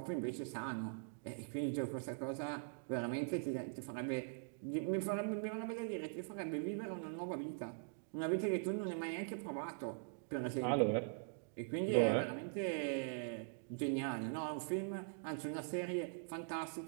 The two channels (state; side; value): silent; left; digital silence